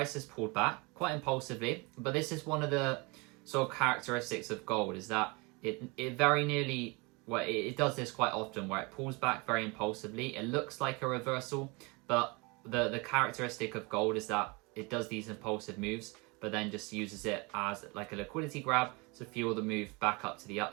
has pulled back quite impulsively, but this is one of the sort of characteristics of gold, is that it very nearly, well, it does this quite often where it pulls back very impulsively. It looks like a reversal, but the characteristic of gold is that it does these impulsive moves, but then just uses it as like a liquidity grab to fuel the move back up to the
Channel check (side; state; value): left; quieter; 28.0 dB